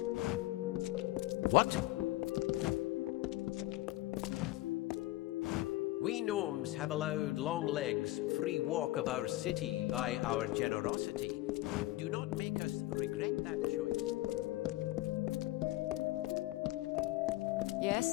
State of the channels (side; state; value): right; quieter; 17.8 dB